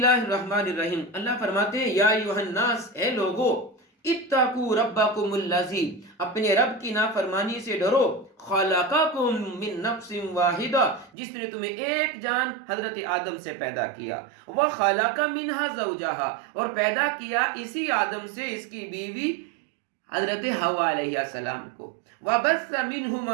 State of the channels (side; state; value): left; drops out; at 11.1 s